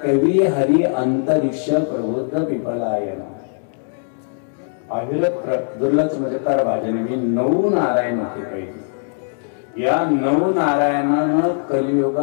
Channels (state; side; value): silent; right; digital silence